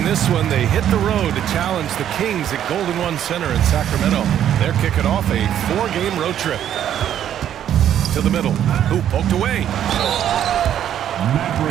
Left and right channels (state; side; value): quieter; left; 10.4 dB